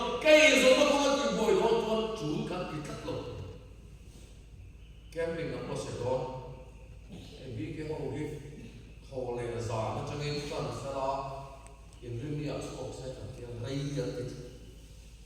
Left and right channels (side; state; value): both; identical; correlation 1.00